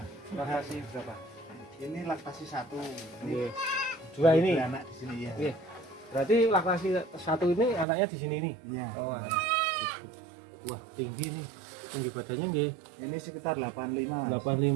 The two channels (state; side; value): drops out; left; at 7.9 s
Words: Laktasi berapa? Ini laktasi 1. Ini Iya. 2 ini. anak di sini ya. Iya. Berarti laktasi 1 ini anaknya di sini ini. Iya. Oh. Wah, tinggi nih. Tinggi badannya nggih. Ini sekitar 85 Mas.